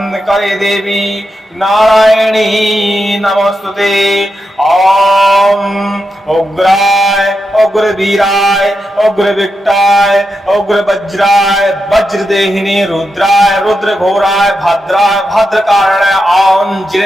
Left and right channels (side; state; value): both; normal; correlation 0.87